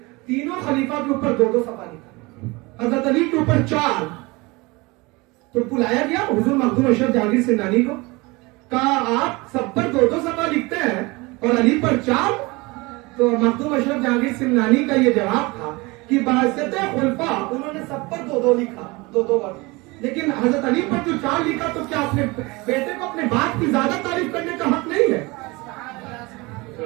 تینوں خلیفہ کے اوپر 2 صفحہ لکھا. حضرت علی کے اوپر 4. تو بلایا گیا حضور مخدوم اشرف جہانگیر سمنانی کو، کہا آپ سب پر 2 صفحہ لکھتے ہیں اور علی پر 4. تو مخدوم اشرف جہانگیر سمنانی کا یہ جواب تھا کہ بحثت خلفاء انہوں نے سب پر 2 لکھا، 2 بار. لیکن حضرت علی پر جو 4 لکھا تو کیا اپنے بیٹے کو اپنے باپ کی زیادہ تعریف کرنے کا حق نہیں ہے؟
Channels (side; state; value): left; quieter; 24.2 dB